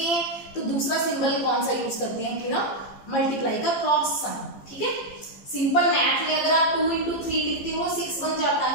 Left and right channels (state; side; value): late; right; 15 ms